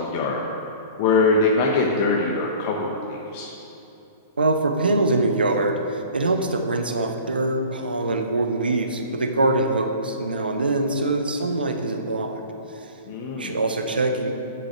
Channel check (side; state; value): both; inverted; correlation -0.45